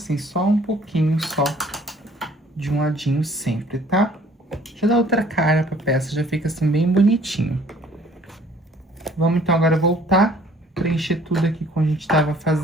só um pouquinho só de um ladinho sempre, tá? Já dá outra cara pra peça, já fica assim bem bonitinho. Vamos então agora voltar, preencher tudo aqui como a gente tava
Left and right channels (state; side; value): normal; both; correlation 0.57